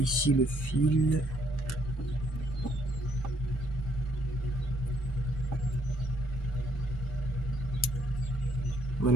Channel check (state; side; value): normal; both; correlation 0.68